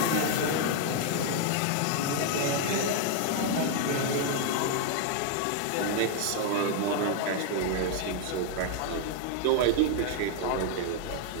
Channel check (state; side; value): different; both; correlation 0.00